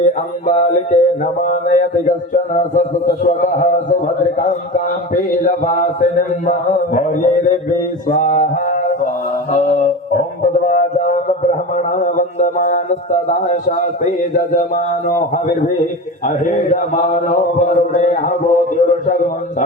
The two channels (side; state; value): both; normal; correlation 0.28